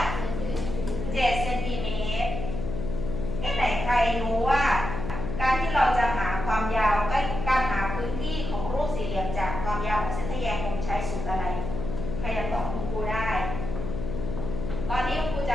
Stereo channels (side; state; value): left; noise; hum, 5 dB below the sound